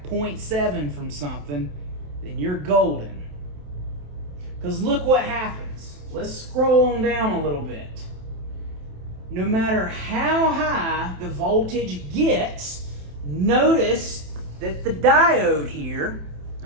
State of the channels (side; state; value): left; late; 27 ms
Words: 0.7 from something, then you're golden. Because look what happens. Let's scroll on down a little bit. No matter how high the voltage gets, notice that the diode here,